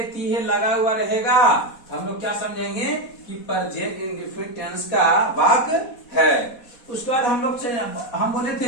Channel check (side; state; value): right; late; 4.1 ms